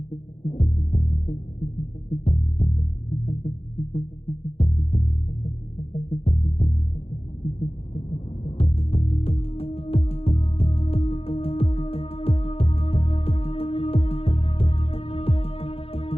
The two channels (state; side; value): late; right; 0.28 ms